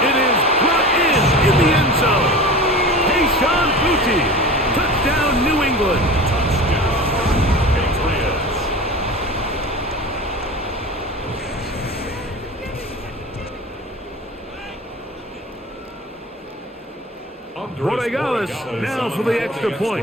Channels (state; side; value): normal; both; correlation 0.35